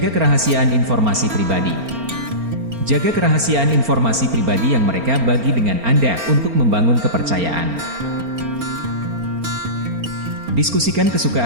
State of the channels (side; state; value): left; late; 4.4 ms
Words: kerahasiaan informasi pribadi. Jaga kerahasiaan informasi pribadi yang mereka bagi dengan Anda untuk membangun kepercayaan. Diskusikan